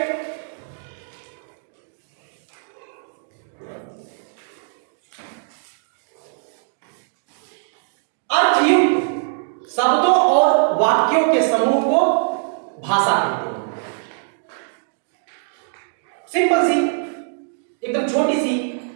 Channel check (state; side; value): silent; left; digital silence